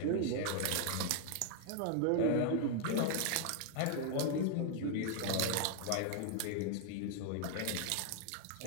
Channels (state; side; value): different; both; correlation 0.00